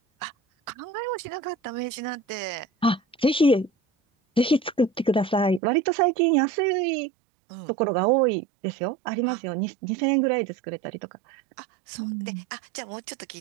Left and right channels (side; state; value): left; drops out; at 5.6 s